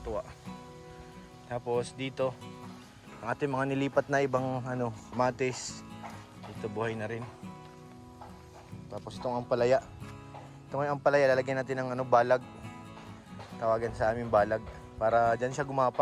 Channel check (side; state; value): both; identical; correlation 1.00